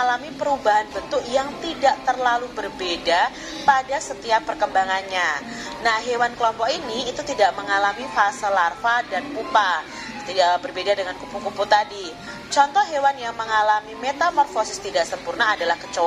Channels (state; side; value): identical; both; correlation 1.00